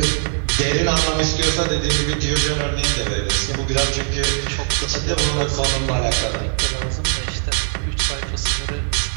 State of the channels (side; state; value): left; silent; 59 dB below the other